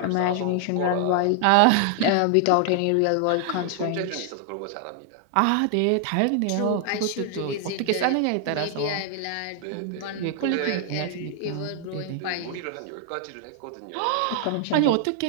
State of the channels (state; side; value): different; both; correlation 0.00